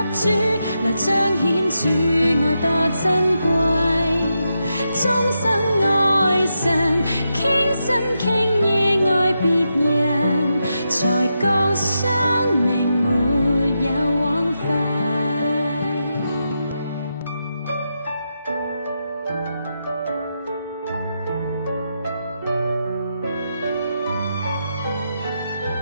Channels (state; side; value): inverted; both; correlation -0.86